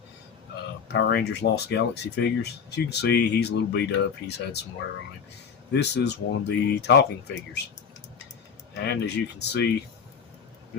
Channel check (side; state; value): right; quieter; 6.7 dB